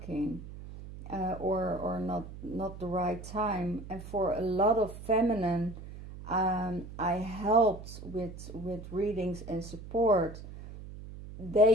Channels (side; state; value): right; noise; hum, 13 dB below the sound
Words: or not the right time. And for a lot of feminine, I helped with readings and support.